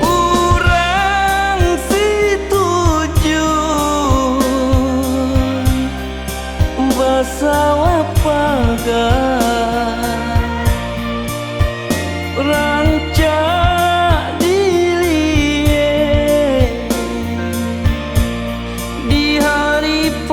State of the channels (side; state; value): both; identical; correlation 1.00